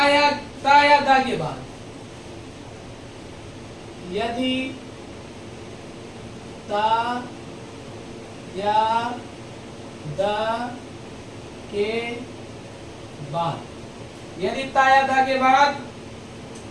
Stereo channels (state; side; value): identical; both; correlation 1.00